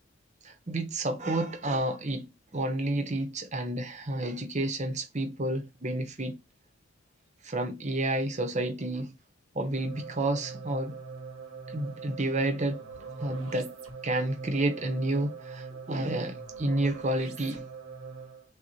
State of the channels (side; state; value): both; normal; correlation 0.52